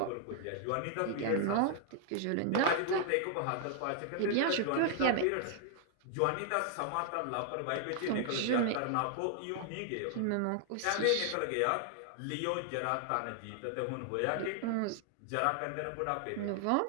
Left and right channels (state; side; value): different; both; correlation 0.00